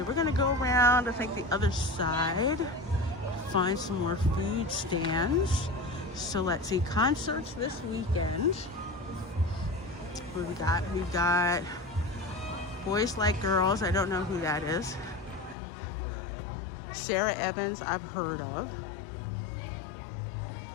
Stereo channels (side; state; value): right; drops out; at 15.6 s